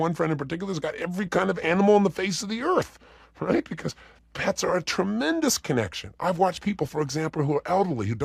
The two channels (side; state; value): both; identical; correlation 1.00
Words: friend in particular who's got every kind of animal on the face of the earth, right? Because pets are a tremendous connection. I've watched people, for example, who are elderly, who